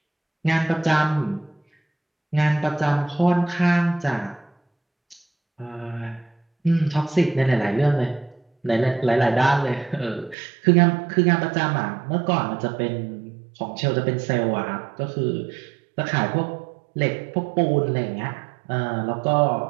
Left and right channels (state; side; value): drops out; left; at 10.4 s